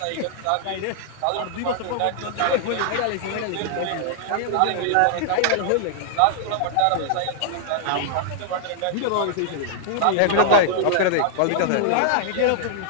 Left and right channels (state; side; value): different; both; correlation -0.01